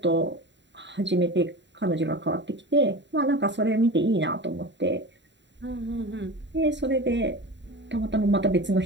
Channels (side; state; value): left; late; 0.52 ms